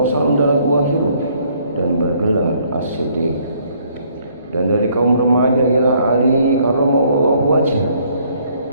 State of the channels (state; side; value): inverted; both; correlation -0.65